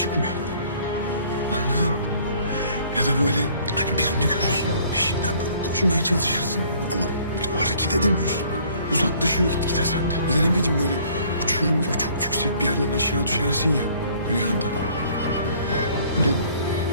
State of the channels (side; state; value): both; inverted; correlation -0.58